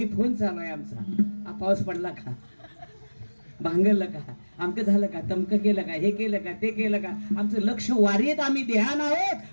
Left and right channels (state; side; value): inverted; both; correlation -1.00